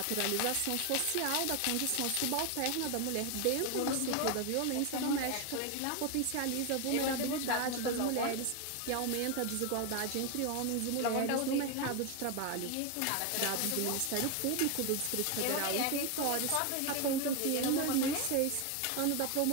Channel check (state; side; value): different; both; correlation 0.01